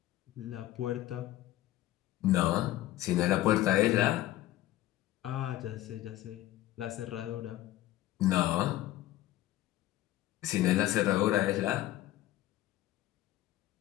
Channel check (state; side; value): quieter; right; 14.9 dB